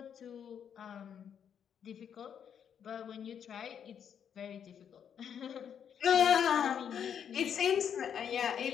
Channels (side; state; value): right; quieter; 8.2 dB